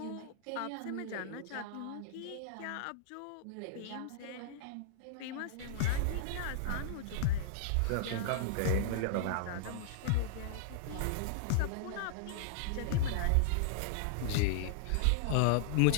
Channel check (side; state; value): both; different; correlation -0.02